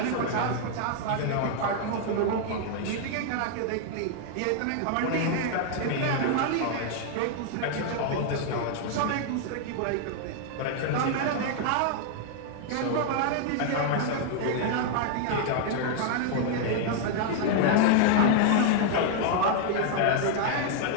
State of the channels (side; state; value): both; different; correlation 0.00